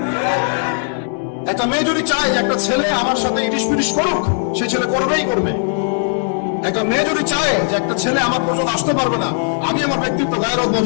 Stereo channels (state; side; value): silent; right; digital silence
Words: একটা মেয়ে যদি চায় একটা ছেলে আমার সাথে ইটিস পিটিস করুক, সেই ছেলে করবেই করবে। একটা মেয়ে যদি চায় যে একটা ছেলে আমার পর্যন্ত আসতে পারবে না, আমি আমার ব্যক্তিত্ব গায়ের